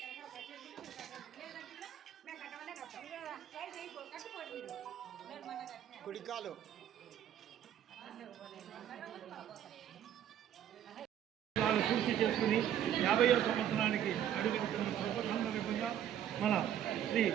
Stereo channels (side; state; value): left; quieter; 10.4 dB